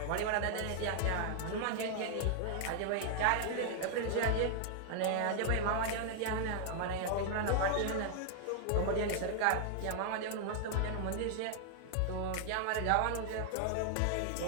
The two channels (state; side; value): different; both; correlation 0.00